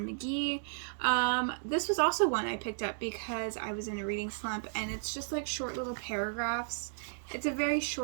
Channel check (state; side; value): silent; left; digital silence